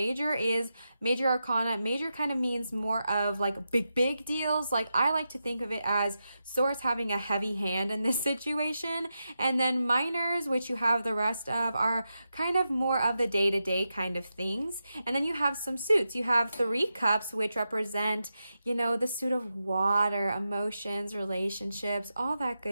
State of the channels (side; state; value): both; inverted; correlation -0.89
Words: is major arcana. Major kind of means more of like big deals. Like I like to think of it as Source having a heavy hand in this situation. And then minors, which you have the rest of, are kind of more of the day-to-day kind of things. And then you have some suits. You have Three Cups, which represent, you know, the suit of water, emotions, relationships, all that